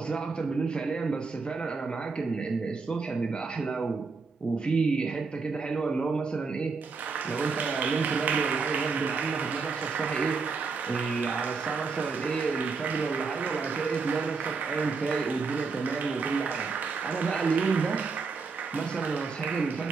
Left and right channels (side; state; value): left; quieter; 4.6 dB